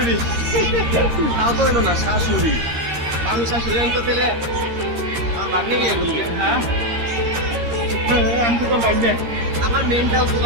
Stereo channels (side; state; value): left; late; 13 ms